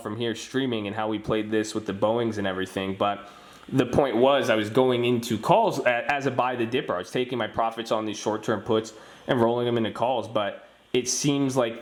here streaming and how we played this with the Boeings and everything. But the point was, I was going into calls as a buy the dipper. I was taking my profits on these short-term puts and rolling them into calls, but it seems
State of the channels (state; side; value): identical; both; correlation 1.00